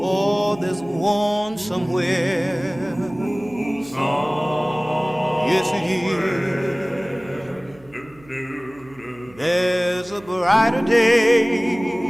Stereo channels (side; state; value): right; noise; hum, 27 dB below the sound